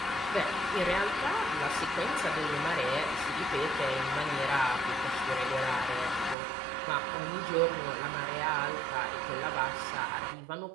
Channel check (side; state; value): left; drops out; at 6.4 s